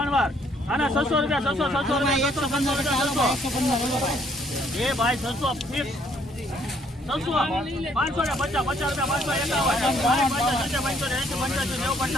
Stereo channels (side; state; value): both; normal; correlation 0.66